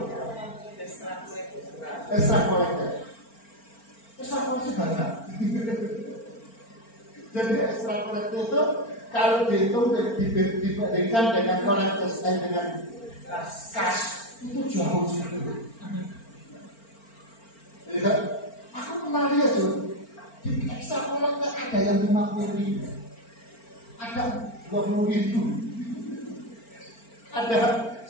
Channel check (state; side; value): late; right; 4.4 ms